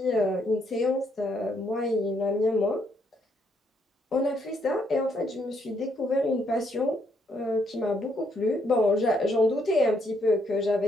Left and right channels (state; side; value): normal; both; correlation 0.73